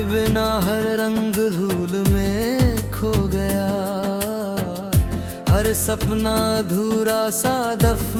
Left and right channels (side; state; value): both; identical; correlation 1.00